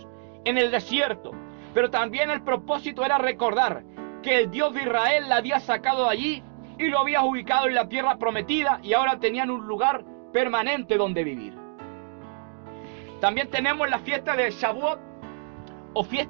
en el desierto. Pero también el propósito era recordar que el Dios de Israel la había sacado de allí y lo había ubicado en la tierra prometida, y ahora tenían un lugar permanente donde vivir. También tenemos la fiesta de Shavuot o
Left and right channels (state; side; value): silent; left; 61 dB below the other